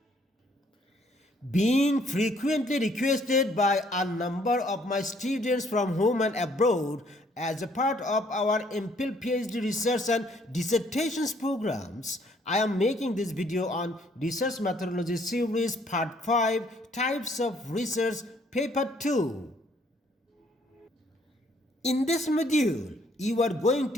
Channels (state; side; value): normal; both; correlation 0.64